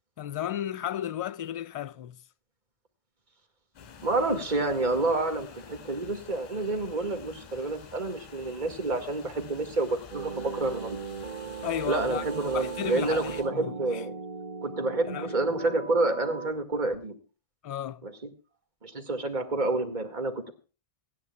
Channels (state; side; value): late; left; 1.6 ms